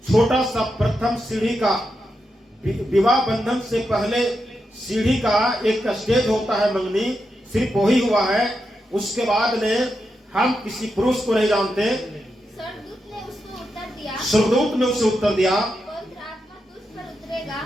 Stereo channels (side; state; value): both; normal; correlation 0.86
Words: छोटा सा प्रथम सीढ़ी का, विवाह बंधन से पहले सीढ़ी का एक स्टेज होता है मंगनी, सिर्फ वही हुआ है। उसके बाद में हम किसी पुरुष को नहीं जानते। स्वर्गदूत ने उसको उत्तर दिया, स्वर्गदूत ने उसे उत्तर दिया,